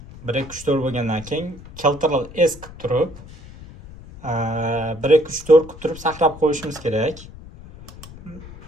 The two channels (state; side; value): noise; left; rumble, 17 dB below the sound